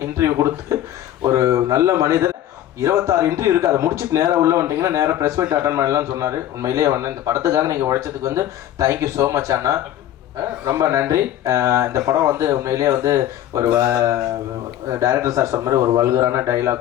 இன்டர்வியூ கொடுத்து ஒரு நல்ல மனிதர். 26 இன்டர்வியூ இருக்குது, அதை முடிச்சுட்டு நேராக உள்ள வந்துட்டிங்கன்னா நேராக ப்ரெஸ் மீட் அட்டன் பண்ணலாம்னு சொன்னார். உண்மையிலேயே வந்து இந்த படத்துக்காக நீங்கள் உழைச்சதுக்கு வந்து தேங்க்யூ ஸோ மச் அண்ணா, ரொம்ப நன்றி. இந்த படம் வந்து உண்மையிலேயே வந்து ஒரு டைரக்டர் சார் சொன்ன மாதிரி ஒரு வல்கரான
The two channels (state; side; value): quieter; right; 12.1 dB